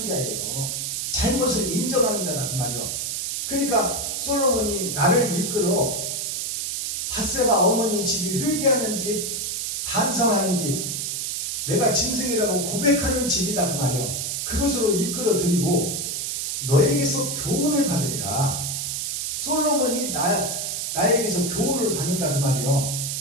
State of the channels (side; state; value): right; noise; hiss, 2 dB below the sound